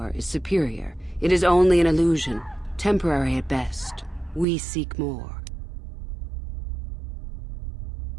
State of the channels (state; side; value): drops out; left; at 4.5 s